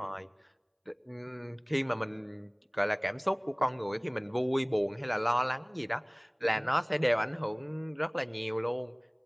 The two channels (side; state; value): both; identical; correlation 1.00